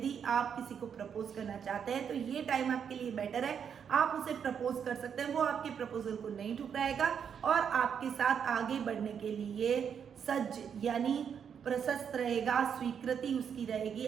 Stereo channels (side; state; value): left; quieter; 7.6 dB